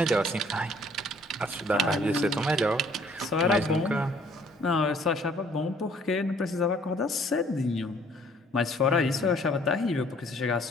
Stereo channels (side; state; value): both; normal; correlation 0.59